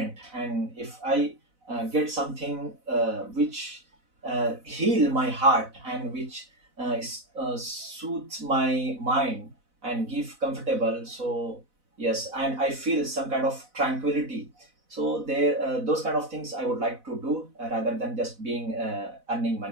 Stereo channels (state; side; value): late; left; 4.0 ms